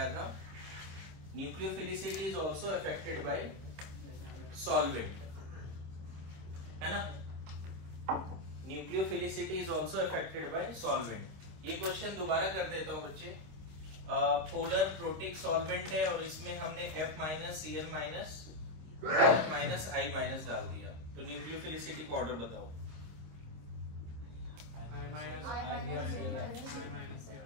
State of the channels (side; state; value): left; late; 26 ms